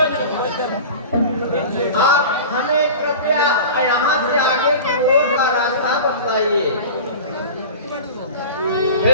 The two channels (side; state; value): both; inverted; correlation -0.36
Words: आप हमें कृपया यहाँ से आगे की ओर का रास्ता बतलाइए। हे